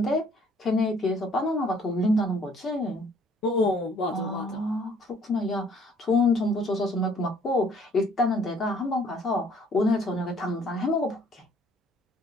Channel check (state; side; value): normal; both; correlation 0.60